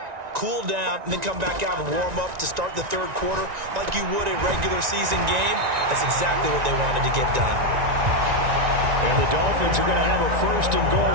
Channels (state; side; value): late; left; 1.9 ms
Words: cool down, and then come back out and warm up to start the third quarter like you would a regular season game. That's exactly what they wanted to get done. And the Dolphins are going to have a 1st and